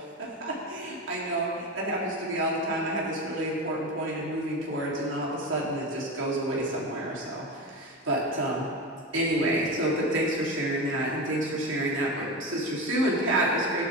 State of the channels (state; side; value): normal; both; correlation 0.22